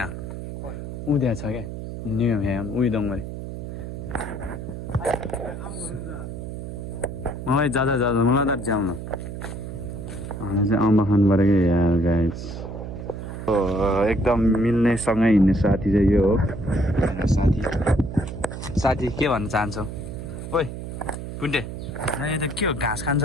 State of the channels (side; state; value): right; noise; hum, 8 dB below the sound